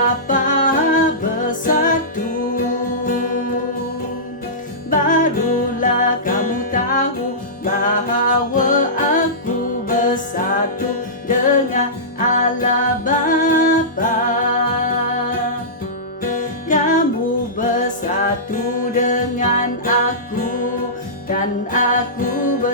bersatu. Barulah kamu tahu bahwa aku bersatu dengan Allah Bapa. Kamu bersatu dengan aku, dan aku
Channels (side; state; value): both; normal; correlation -0.19